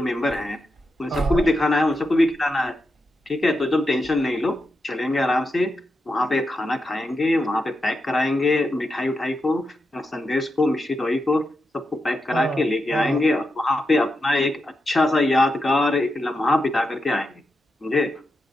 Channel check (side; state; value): both; normal; correlation 0.87